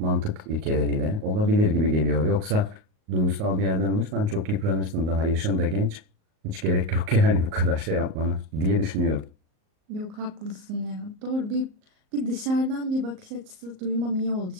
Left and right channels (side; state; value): left; late; 38 ms